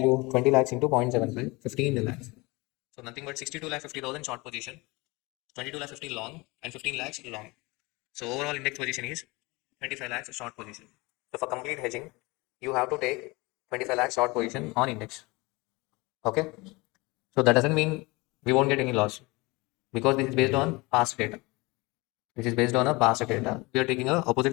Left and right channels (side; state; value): right; quieter; 24.4 dB